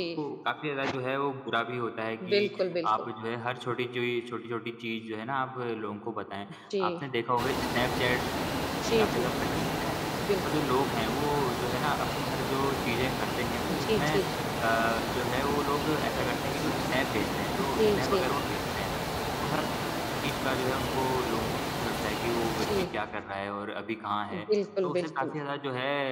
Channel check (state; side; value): identical; both; correlation 1.00